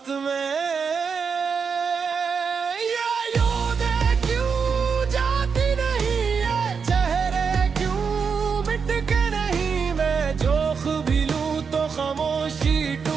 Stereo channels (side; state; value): left; quieter; 5.9 dB